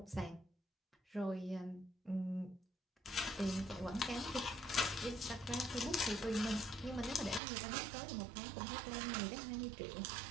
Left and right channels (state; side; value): drops out; left; at 7.4 s